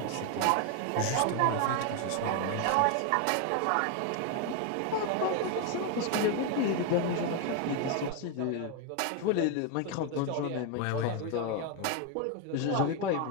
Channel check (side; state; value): both; different; correlation 0.01